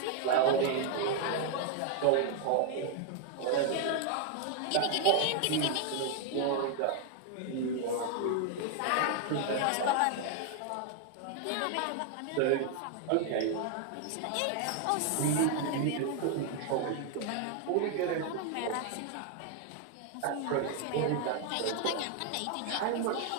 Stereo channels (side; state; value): both; different; correlation 0.00